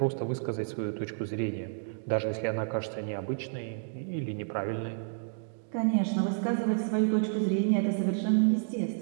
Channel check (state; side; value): silent; left; digital silence